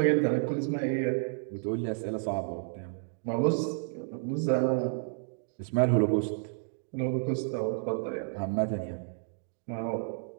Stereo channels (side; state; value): left; silent; digital silence